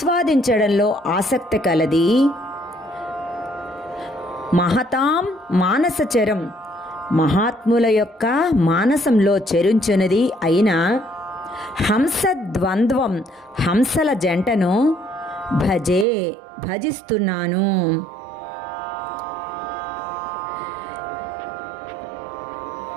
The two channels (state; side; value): drops out; left; at 16.1 s